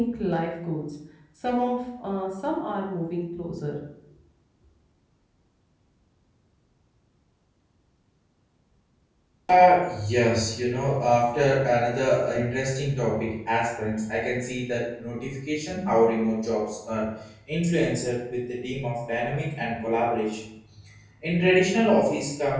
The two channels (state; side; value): identical; both; correlation 1.00